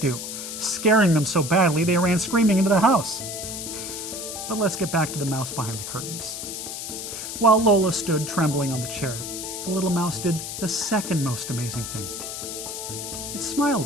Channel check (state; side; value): noise; left; hiss, 7 dB below the sound